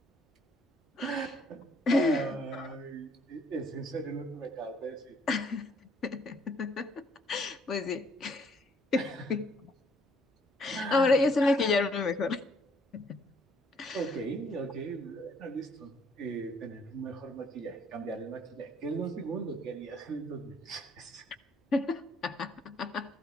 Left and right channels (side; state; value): both; normal; correlation 0.65